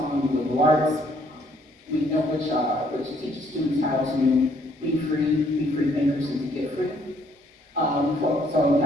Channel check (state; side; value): normal; both; correlation 0.66